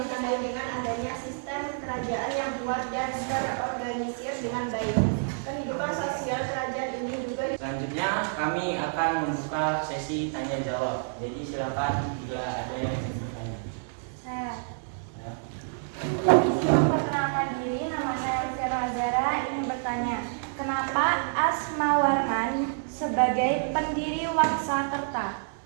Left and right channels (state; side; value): silent; left; digital silence